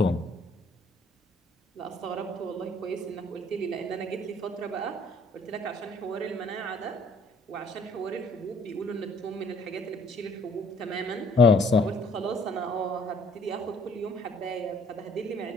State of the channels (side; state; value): both; normal; correlation 0.59